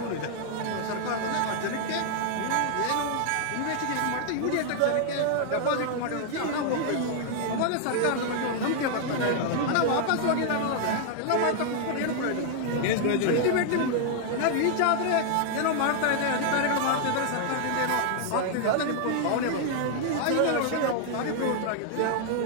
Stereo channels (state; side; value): different; both; correlation 0.00